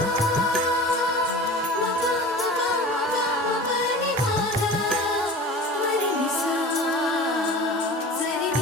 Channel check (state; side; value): normal; both; correlation 0.37